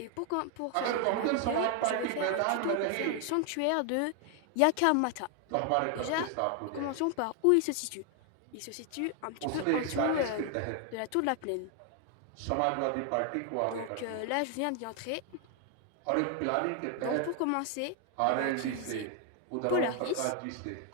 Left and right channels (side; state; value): both; different; correlation 0.00